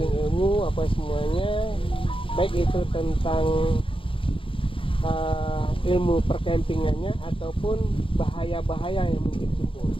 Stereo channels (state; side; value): late; right; 0.25 ms